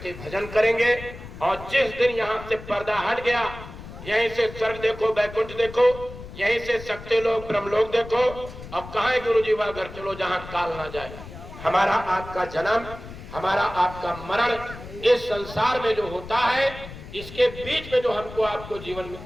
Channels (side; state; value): left; noise; rumble, 14 dB below the sound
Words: भजन करेंगे। और जिस दिन यहाँ से पर्दा हट गया, यहीं से स्वर्ग देखो, बैकुंठ देखो, यहीं से शक्ति लोग, ब्रह्मलोक देखो। अब कहाँ है गुरु जी? वह घर चलो जहाँ काल ना जाए। हमारा आपका जन्म, हमारा आपका मरण इस संसार में जो होता है, इसके बीच में जो हमको आपको जीवन